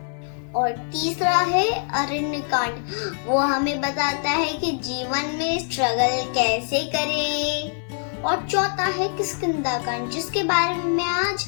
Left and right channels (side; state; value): right; silent; 56 dB below the other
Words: और तीसरा है अरण्य कांड, वो हमें बताता है कि जीवन में स्ट्रगल कैसे करें। और चौथा है किष्किंधा कांड, जिसके बारे में मैं आज